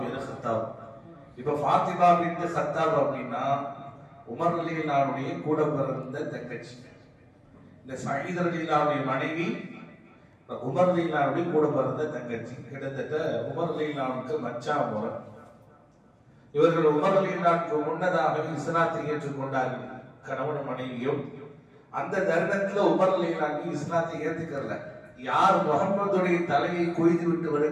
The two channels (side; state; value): both; identical; correlation 1.00